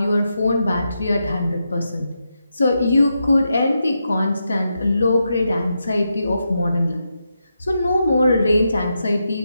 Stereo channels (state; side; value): inverted; both; correlation -0.85